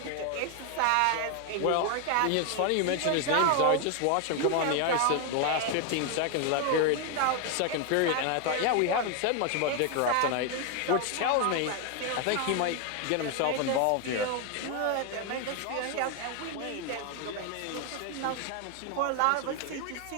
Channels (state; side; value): different; both; correlation 0.01